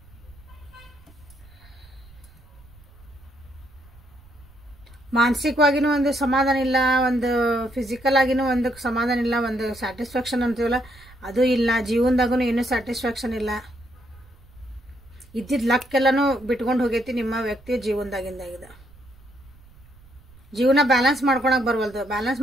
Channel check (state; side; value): noise; right; rumble, 24 dB below the sound